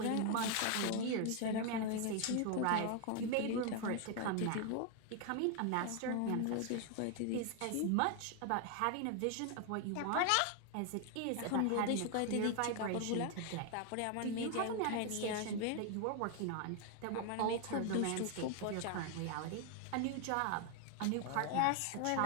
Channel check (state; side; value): different; both; correlation 0.01